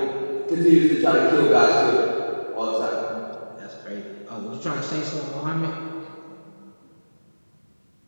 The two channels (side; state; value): both; inverted; correlation -1.00